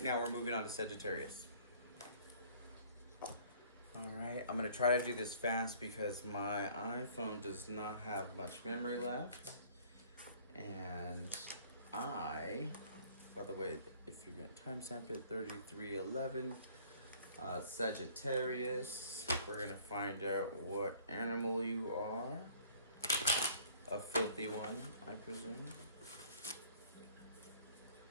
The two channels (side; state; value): both; inverted; correlation -0.54